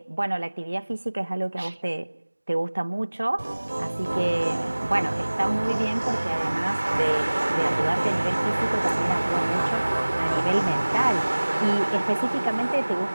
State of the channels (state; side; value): inverted; both; correlation -1.00